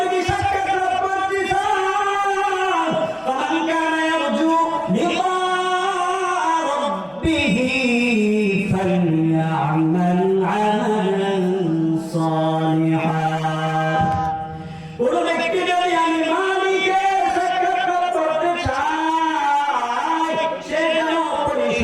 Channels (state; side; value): identical; both; correlation 1.00